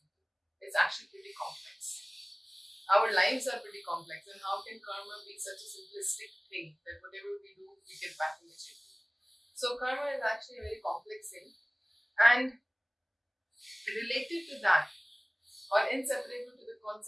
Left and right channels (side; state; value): both; identical; correlation 1.00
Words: It's actually pretty complex. Our lives are pretty complex, and how can karma be such a simplistic thing that whatever we do, we get back immediately? So, karma is actually a very complex thing, and related to that, or inseparable to the